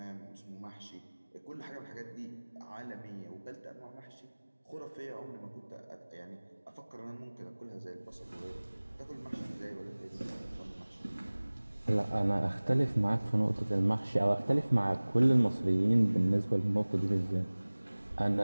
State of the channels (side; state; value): both; inverted; correlation -1.00